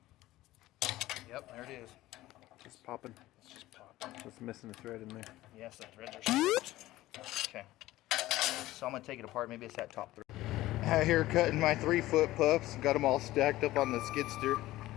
Yep, there it is. Just popping. It's just popping. Just missing a thread in there. Yes, the threads are stripped. Okay. So I'm gonna take it apart. Maybe it's that top thread. Out here cutting my 3-foot pups. Got them all stacked up on the skidster.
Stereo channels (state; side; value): quieter; right; 16.5 dB